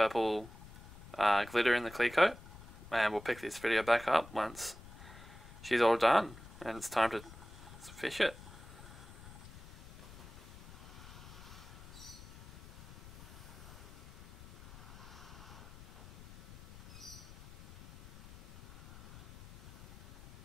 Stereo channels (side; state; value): left; noise; rumble, 16 dB below the sound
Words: glitter in the clear coat. And we'll pick this video back up once she's all done. And it's time to fish it.